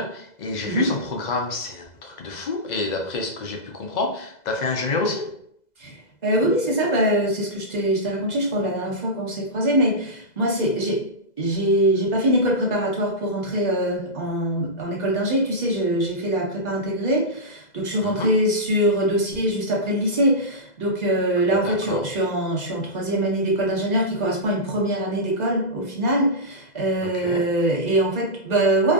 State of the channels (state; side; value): late; right; 2.0 ms